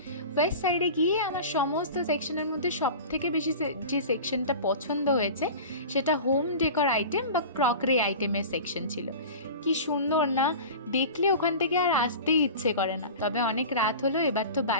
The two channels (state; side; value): inverted; both; correlation -0.34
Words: ওয়েস্ট সাইডে গিয়ে আমার সমস্ত সেকশনের মধ্যে সব থেকে বেশি যে সেকশনটা পছন্দ হয়েছে সেটা হোম ডেকর আইটেম বা ক্রকারি আইটেমের সেকশন ছিল। কি সুন্দর না, দেখলে ওখান থেকে আর আসতেই ইচ্ছে করে না। তবে অনেক রাত হলো, এবার তো